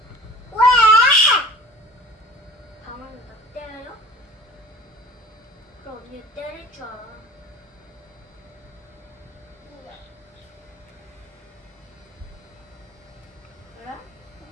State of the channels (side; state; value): both; normal; correlation 0.44